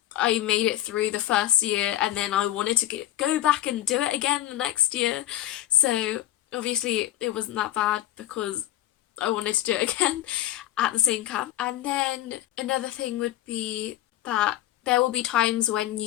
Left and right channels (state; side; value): quieter; right; 13.7 dB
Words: I made it through the first year and then I wanted to go back and do it again the next year. So obviously it wasn't that bad because I wanted to do it again at the same camp. And then another thing would be that there will be times when